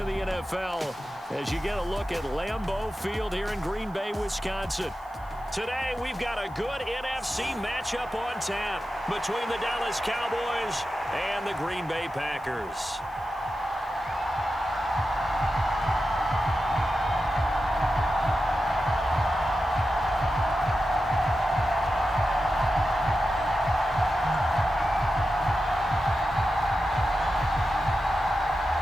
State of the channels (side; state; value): right; noise; hiss, 30 dB below the sound